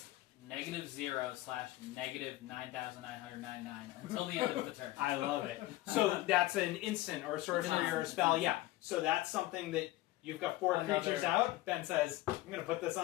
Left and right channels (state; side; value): quieter; right; 17.2 dB